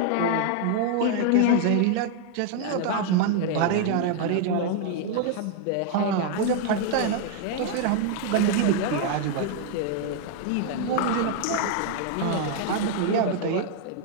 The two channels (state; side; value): different; both; correlation 0.00